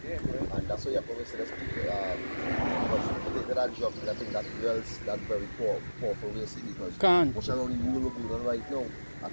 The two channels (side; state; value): both; inverted; correlation -1.00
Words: Yeah, and that's why you probably see those people, because that job, I think that dwells that very powerful way, see, because much around the world we're going on right now. I